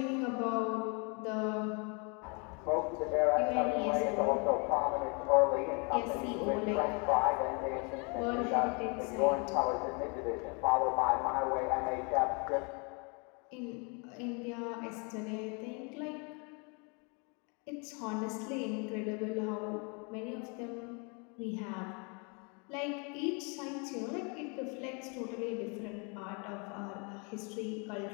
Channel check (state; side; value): quieter; right; 33.8 dB